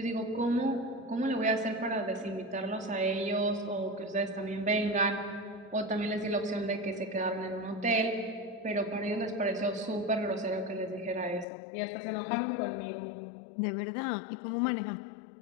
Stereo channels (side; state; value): right; drops out; at 11.5 s